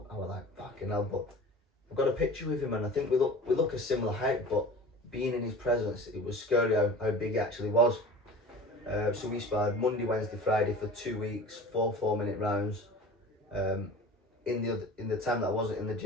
I was like, fucking hell. But I've got a picture with him and I think we look a similar height, but being in his presence, it was scary how big he actually was. So we sparred Monday, Wednesday, Friday for 2 weeks, 4 4-minute rounds. in the time that I wasn't in the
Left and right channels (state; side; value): normal; both; correlation 0.38